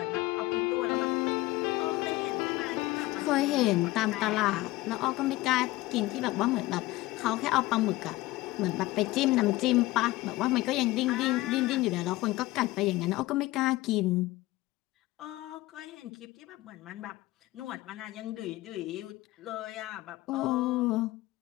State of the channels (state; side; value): quieter; right; 18.9 dB